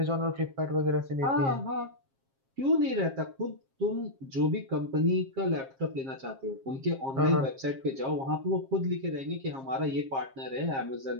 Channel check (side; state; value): left; late; 7.4 ms